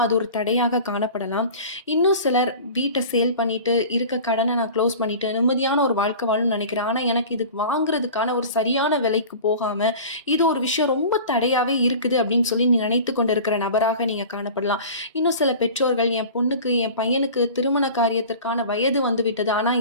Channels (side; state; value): both; inverted; correlation -0.38